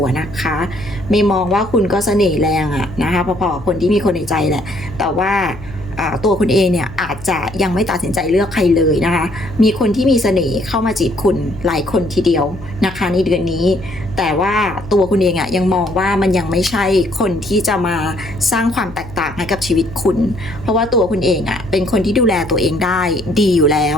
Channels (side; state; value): left; noise; hum, 17 dB below the sound